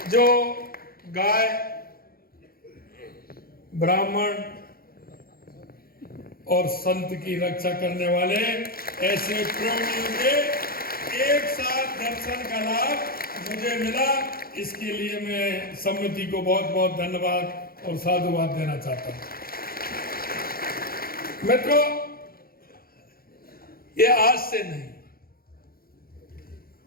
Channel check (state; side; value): late; right; 0.43 ms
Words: जो गाय, ब्राह्मण और संत की रक्षा करने वाले ऐसे प्राणियों के एक साथ दर्शन का लाभ मुझे मिला, इसके लिए मैं समिति को बहुत बहुत धन्यवाद और साधुवाद देना चाहता हूं। मित्रों, ये आज से नहीं,